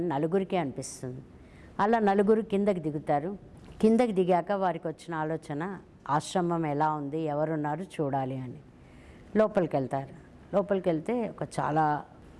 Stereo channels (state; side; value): identical; both; correlation 1.00